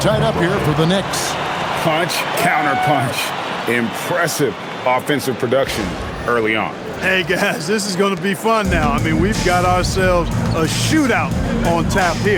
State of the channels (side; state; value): both; identical; correlation 1.00